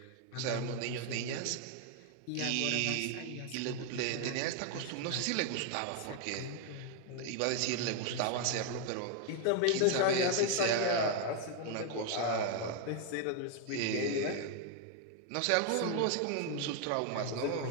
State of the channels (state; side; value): different; both; correlation 0.01